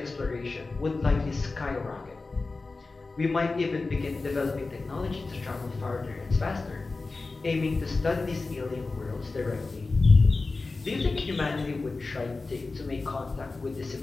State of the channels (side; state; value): right; quieter; 3.7 dB